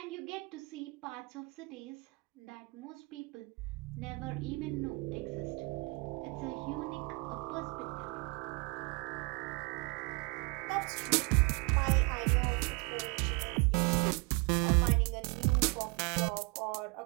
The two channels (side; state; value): left; quieter; 28.1 dB